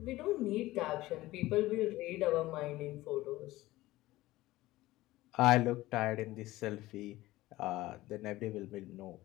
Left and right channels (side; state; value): right; quieter; 17.6 dB